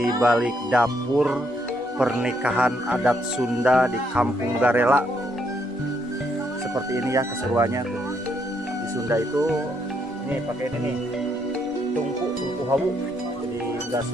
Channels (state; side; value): normal; both; correlation 0.74